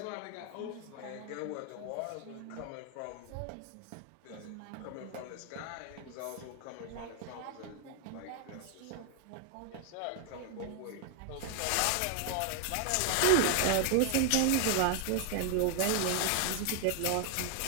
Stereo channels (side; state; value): both; different; correlation 0.00